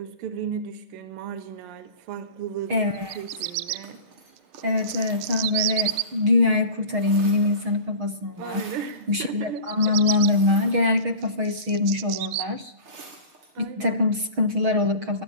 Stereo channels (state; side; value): late; left; 6.4 ms